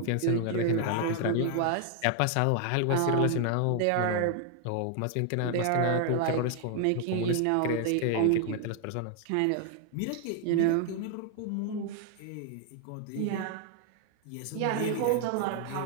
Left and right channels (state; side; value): different; both; correlation 0.00